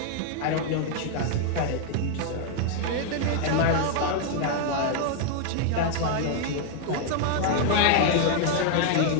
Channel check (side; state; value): both; different; correlation 0.00